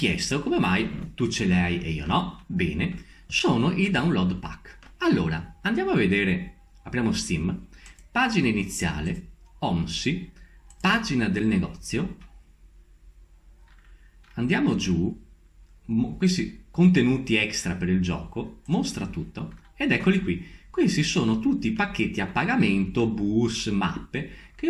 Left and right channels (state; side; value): identical; both; correlation 1.00